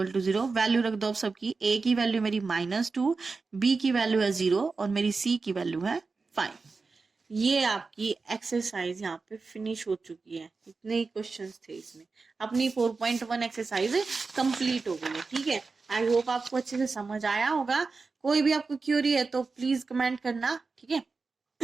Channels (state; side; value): quieter; left; 4.3 dB